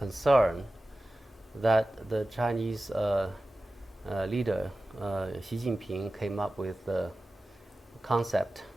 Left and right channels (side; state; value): both; normal; correlation 0.95